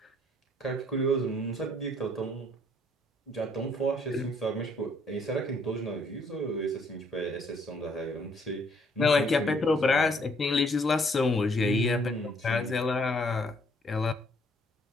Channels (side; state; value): both; normal; correlation 0.65